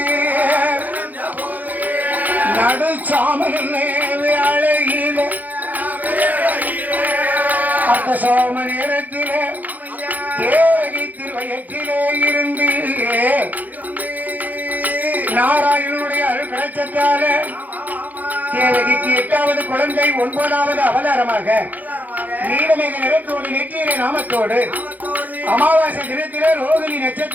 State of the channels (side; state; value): left; late; 0.082 ms